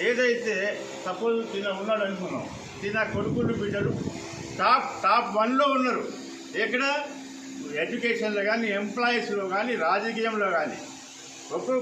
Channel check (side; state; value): both; identical; correlation 1.00